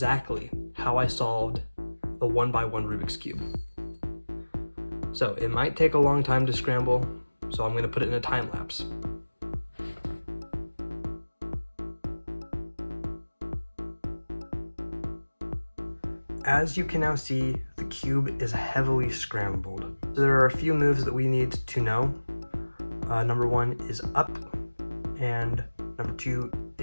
how I solved the 1x1 Rubik's Cube. So it might take a long time to scramble, so I'm going to put it in a time lapse. As you can now see, the cube is heavily scrambled. So there are a few moves that we need to know. Number 1 is up, and number 2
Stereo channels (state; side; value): inverted; both; correlation -1.00